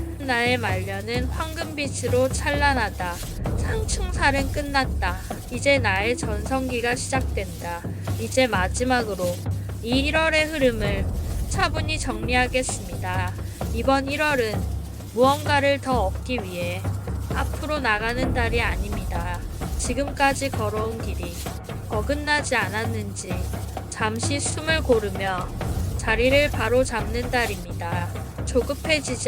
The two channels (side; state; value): both; identical; correlation 1.00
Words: 나의 말년은 황금빛으로 찬란하다. 상충살은 끝났다. 이제 나의 전성기가 시작된다. 이제 마지막으로 이 1월의 흐름을 차분히 정리하겠습니다. 이번 1월은 무언가를 더 얻기 위해 앞으로 나가는 달이 아닙니다. 지금까지 걸어온 길이 어긋나지 않았는지 잠시 숨을 고르며 자리를 바로 잡는 달입니다.